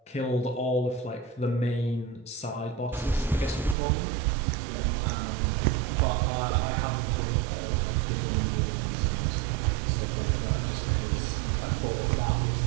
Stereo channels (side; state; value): left; drops out; at 3.8 s